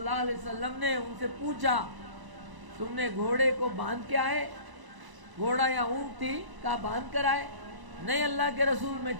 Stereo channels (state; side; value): late; left; 1.0 ms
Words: علیہ وسلم نے ان سے پوچھا تم نے گھوڑے کو باندھ کے آئے؟ گھوڑا یا اونٹ تھی، کہا باندھ کر آئے. نہیں اللہ کے رسول، میں